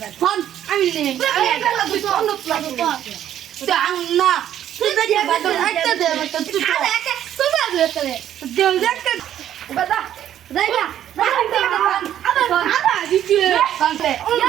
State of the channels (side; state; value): left; quieter; 11.0 dB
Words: ফোন আমি নেই না তুই দেখে বাদ একটা দে তুই দেও দেখতে বাদা যাইবা আবার আদা দিছি কানতে